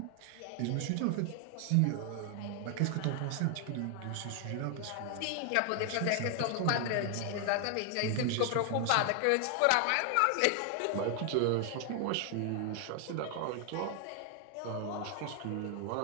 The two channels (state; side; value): different; both; correlation 0.00